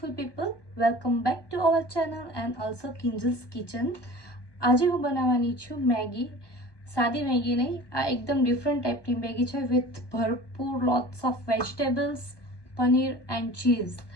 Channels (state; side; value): late; right; 1.2 ms